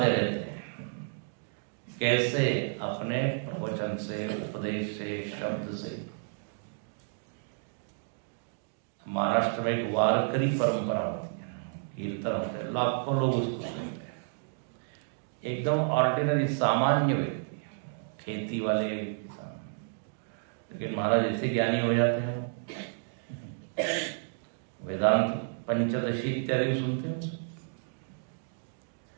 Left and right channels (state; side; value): silent; left; digital silence